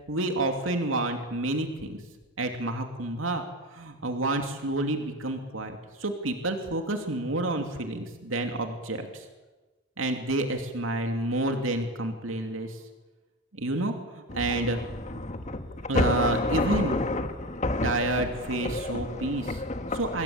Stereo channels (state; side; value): normal; both; correlation 0.25